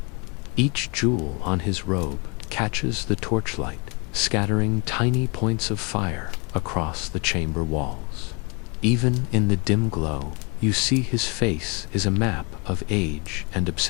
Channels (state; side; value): quieter; right; 32.0 dB